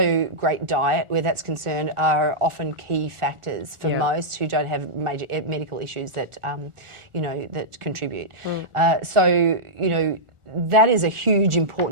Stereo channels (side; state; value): left; late; 1.4 ms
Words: great diet, where that's concerned, are often key factors for most who don't have major medical issues that that contribute. So that is a huge